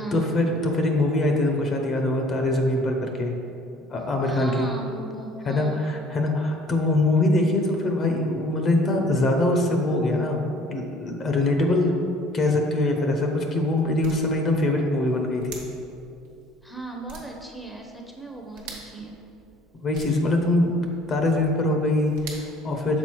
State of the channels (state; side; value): normal; both; correlation 0.55